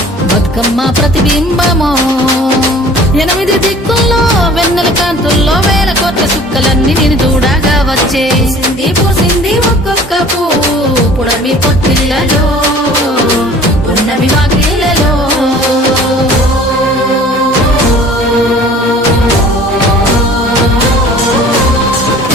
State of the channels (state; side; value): normal; both; correlation 0.48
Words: బతుకమ్మ ప్రతిబింబమో పుట్ల సుక్కలన్నీ నేను చూడగా వచ్చే పూసింది పూసింది ఒక్కొక్క పువ్వు పుడమి పొత్తిళ్ళలో పున్నమి వాకిళ్ళలో